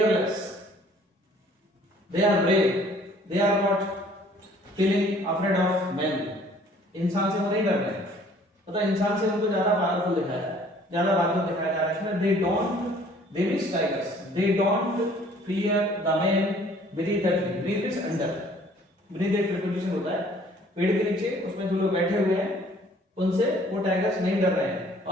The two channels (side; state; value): both; normal; correlation 0.56